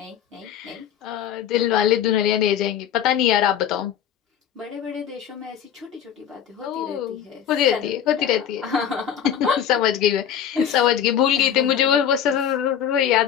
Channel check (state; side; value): quieter; right; 9.3 dB